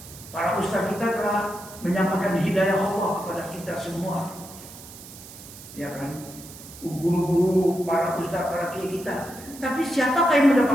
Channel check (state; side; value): noise; right; hiss, 17 dB below the sound